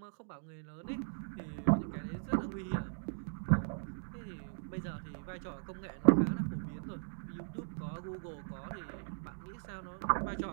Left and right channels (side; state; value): left; silent; digital silence